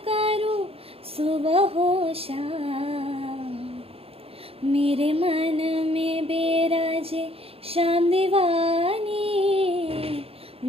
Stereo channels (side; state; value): left; late; 0.28 ms